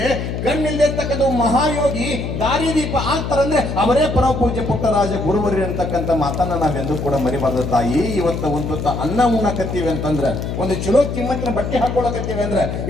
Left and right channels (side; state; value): left; noise; hum, 4 dB below the sound